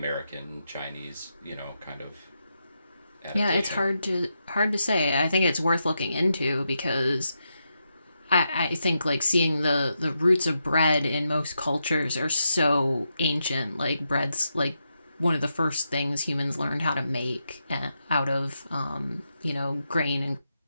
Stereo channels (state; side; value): inverted; both; correlation -0.85